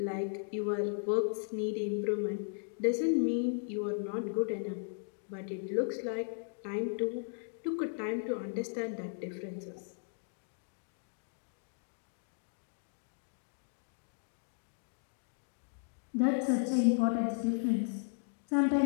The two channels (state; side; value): silent; right; digital silence